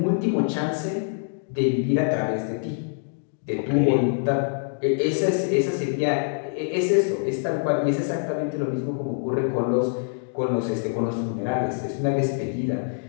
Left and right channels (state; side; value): silent; right; digital silence